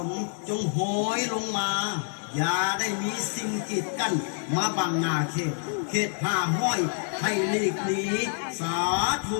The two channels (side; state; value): right; silent; 60 dB below the other